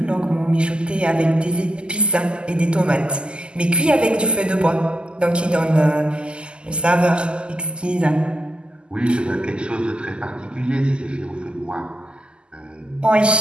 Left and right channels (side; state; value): left; late; 0.050 ms